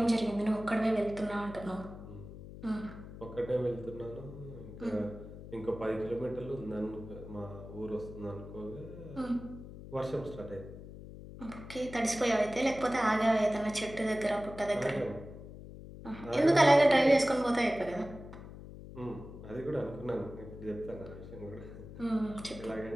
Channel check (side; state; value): left; noise; hum, 14 dB below the sound